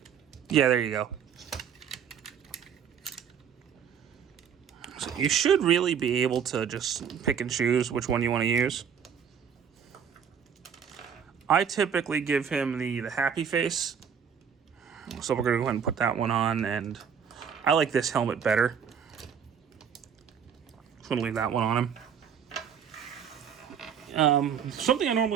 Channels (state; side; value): quieter; left; 7.6 dB